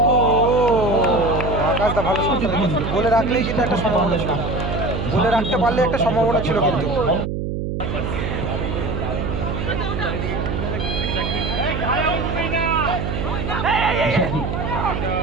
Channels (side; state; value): right; noise; hum, 3 dB below the sound